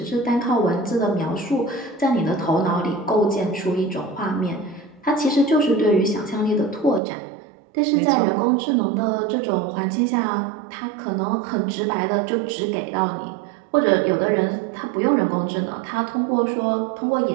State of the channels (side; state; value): left; drops out; at 7.0 s